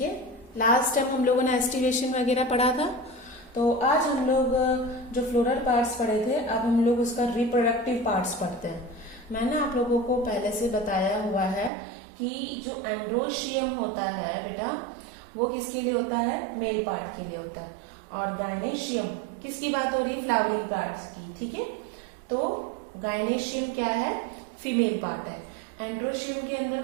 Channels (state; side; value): drops out; left; at 11.7 s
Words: है, लास्ट टाइम हम लोगों ने एस्टिवेशन वगैरह पढ़ा था, तो आज हम लोग जो फ्लोरल पार्ट्स पढ़े थे, अब हम लोग उसका रिप्रोडक्टिव पार्ट्स पढ़ते हैं। मैंने आप लोगों को पहले से बताया हुआ है कि जो एंड्रोशियम होता है बेटा, वो किसके लिए होता है, मेल पार्ट के लिए होता है, और गायनेशियम किसकी बात हो रही है, फ्लावरिंग पार्ट की। ठीक है, तो गायनेशियम क्या है, फीमेल पार्ट है। एंड्रोशियम के